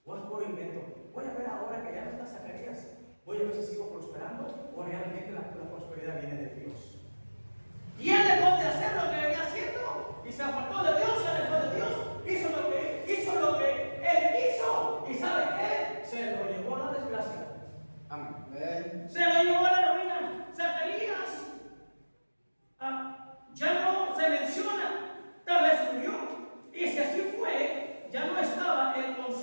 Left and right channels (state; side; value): inverted; both; correlation -1.00